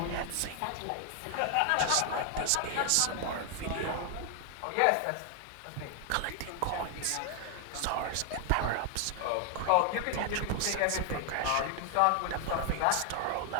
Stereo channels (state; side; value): different; both; correlation 0.00